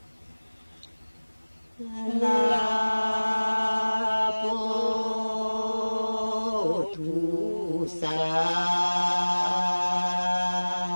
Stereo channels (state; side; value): inverted; both; correlation -1.00